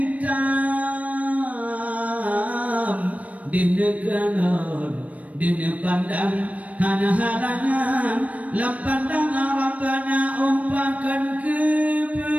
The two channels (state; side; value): late; left; 0.068 ms